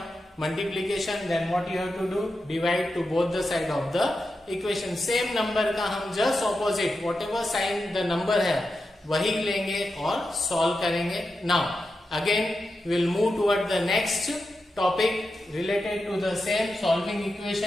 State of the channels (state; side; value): normal; both; correlation 0.89